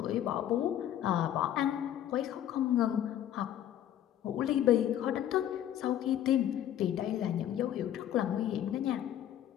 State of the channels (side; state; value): right; quieter; 11.2 dB